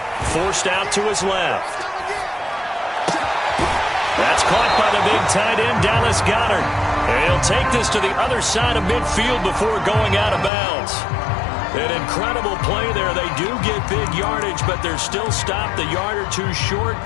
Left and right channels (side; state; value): right; drops out; at 10.5 s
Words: Forced out to his left. That's caught by the big tight end, Dallas Goedert. And he'll take this to the other side of midfield before going out of bounds. An incredible play there. They do get big yardage, but they're still stopped a yard or two short,